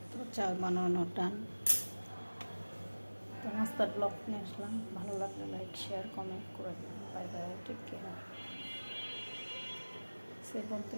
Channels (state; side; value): inverted; both; correlation -1.00